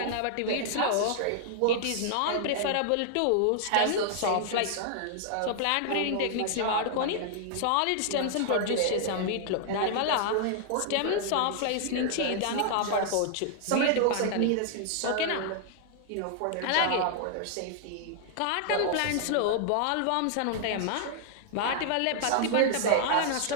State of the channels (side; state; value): both; different; correlation -0.01